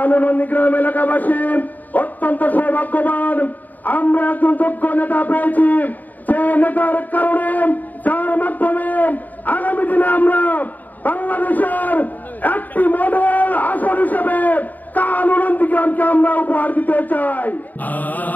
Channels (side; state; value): right; late; 0.083 ms